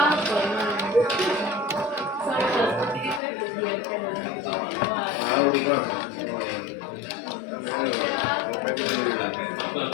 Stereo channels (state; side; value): drops out; right; at 3.2 s